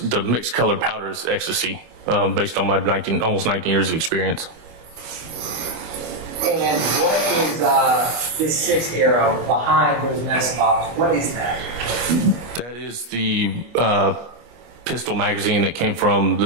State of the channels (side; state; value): left; late; 25 ms